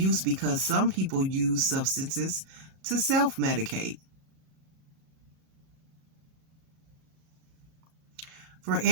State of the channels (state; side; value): late; left; 37 ms